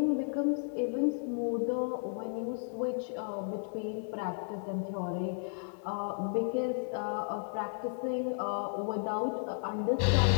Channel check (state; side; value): silent; right; digital silence